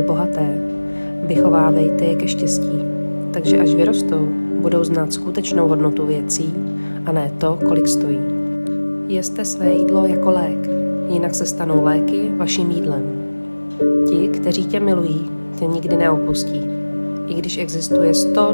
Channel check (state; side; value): inverted; both; correlation -1.00